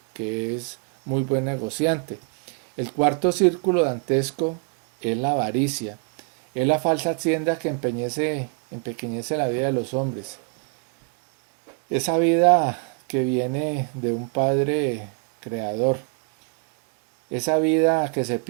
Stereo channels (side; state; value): left; quieter; 35.5 dB